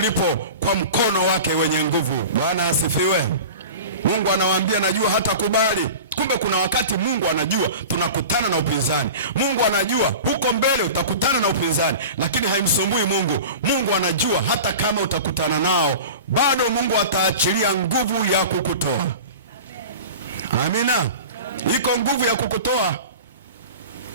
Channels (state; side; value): inverted; both; correlation -0.35